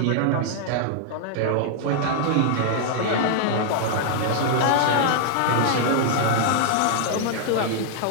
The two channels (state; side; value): different; both; correlation -0.01